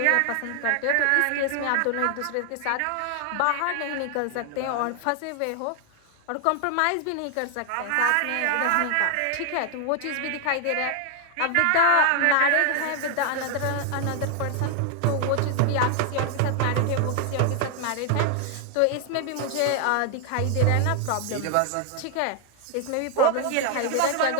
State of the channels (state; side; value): different; both; correlation 0.00